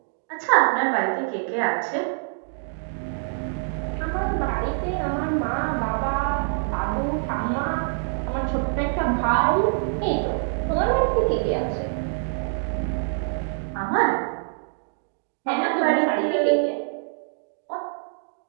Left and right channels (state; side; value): silent; left; digital silence